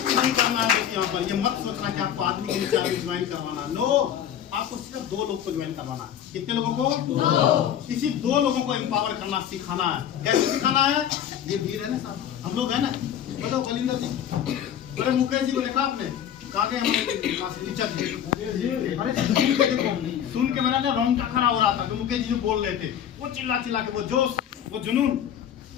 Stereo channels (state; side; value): quieter; right; 9.8 dB